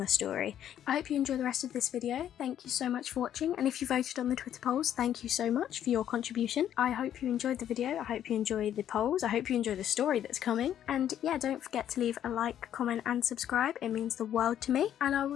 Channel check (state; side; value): quieter; right; 10.5 dB